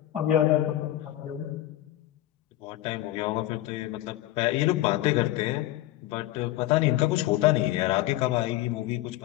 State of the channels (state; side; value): quieter; right; 15.0 dB